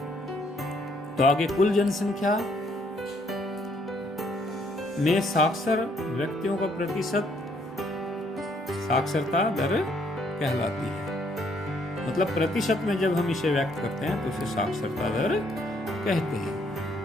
तो आगे कुल जनसंख्या में साक्षर व्यक्तियों का प्रतिशत साक्षरता दर कहलाती है। मतलब प्रतिशत में जब हम इसे व्यक्त करते हैं तो उसे साक्षरता दर कहते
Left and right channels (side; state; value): both; normal; correlation 0.68